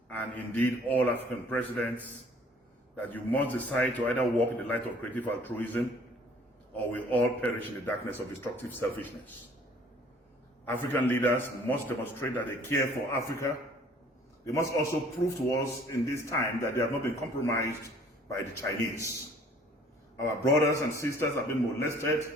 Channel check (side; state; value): both; normal; correlation 0.55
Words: and indeed all African presidents, that you must decide to either walk in the light of creative altruism or we all perish in the darkness of destructive selfishness. African leaders must demonstrate that they care for Africa. They must also prove to us in this time that they have not been compromised by the Chinese. Our brothers and sisters have been molested,